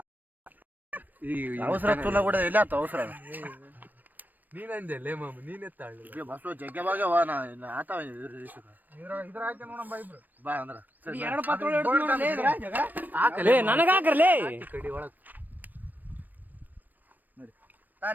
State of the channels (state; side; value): late; left; 0.088 ms